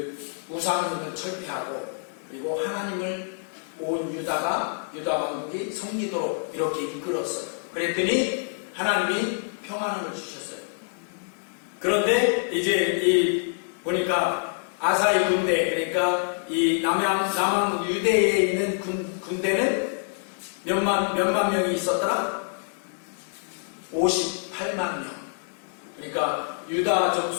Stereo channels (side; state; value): right; silent; 60 dB below the other